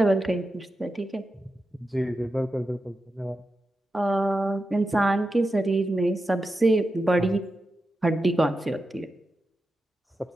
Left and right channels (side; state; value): both; normal; correlation 0.90